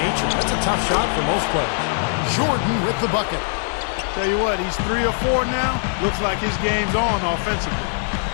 That's a tough shot for most players. Jordan with the bucket. Tell you what, he's 3 or 4 now. Looks like his game's on offensively.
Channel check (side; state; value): right; silent; 59 dB below the other